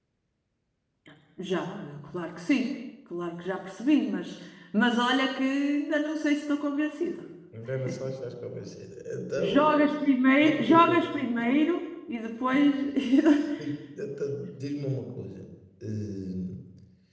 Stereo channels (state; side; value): identical; both; correlation 1.00